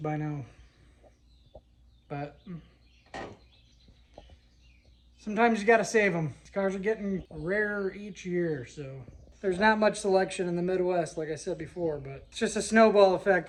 now, but sometimes you gotta save them. These cars are getting rarer each year, so there's not much selection in the Midwest, like I said before, but it's just a snowball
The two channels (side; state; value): both; identical; correlation 1.00